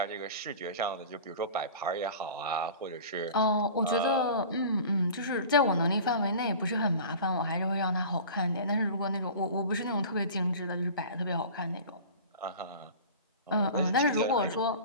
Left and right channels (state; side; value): inverted; both; correlation -0.39